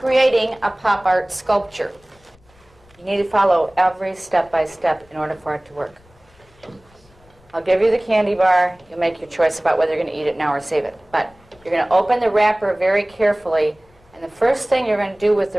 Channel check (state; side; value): noise; left; rumble, 30 dB below the sound